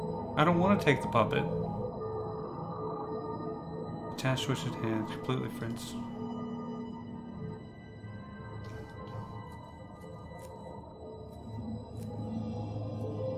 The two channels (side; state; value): both; identical; correlation 1.00